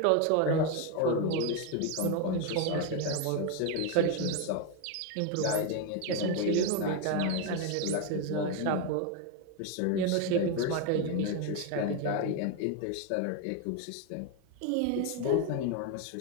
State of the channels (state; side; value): different; both; correlation 0.02